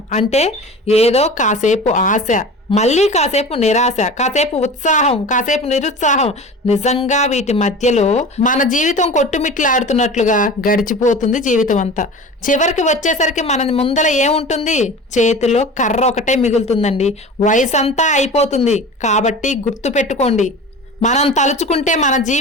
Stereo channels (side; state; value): both; normal; correlation 0.36